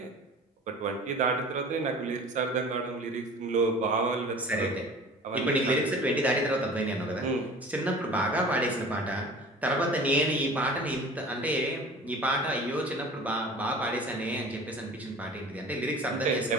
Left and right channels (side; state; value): both; normal; correlation 0.43